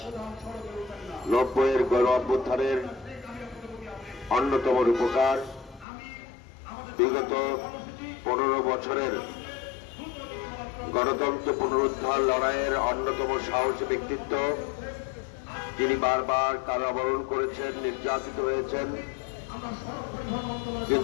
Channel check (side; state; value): right; drops out; at 5.9 s